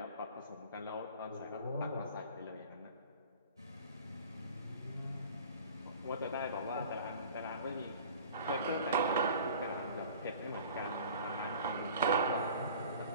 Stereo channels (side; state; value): both; inverted; correlation -0.45